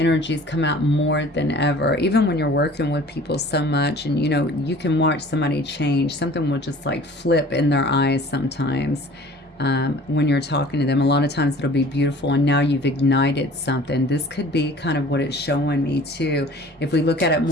come out more than ever. Even when you're working with people so much, and you know, you can watch somebody change. Something will just like flip in their eyes sometimes when you're talking to them. A lot of times it'll be beautiful, and now you've ignited something. This could be kind of what it's showing me too. If we look at it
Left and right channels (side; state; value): both; normal; correlation 0.47